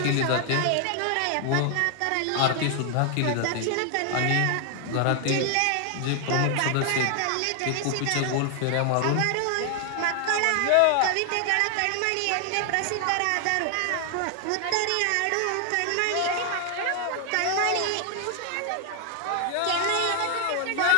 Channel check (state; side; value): different; both; correlation 0.00